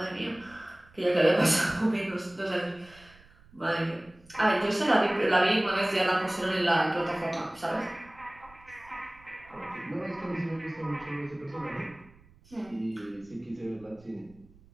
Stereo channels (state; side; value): noise; right; rumble, 26 dB below the sound